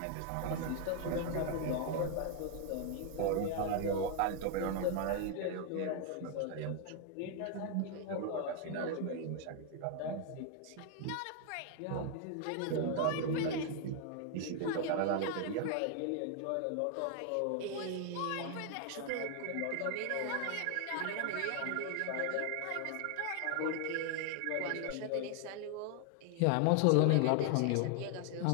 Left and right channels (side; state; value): both; different; correlation 0.00